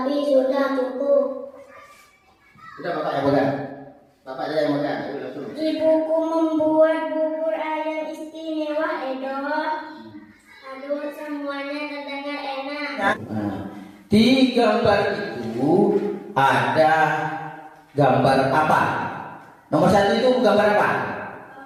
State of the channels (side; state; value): both; identical; correlation 1.00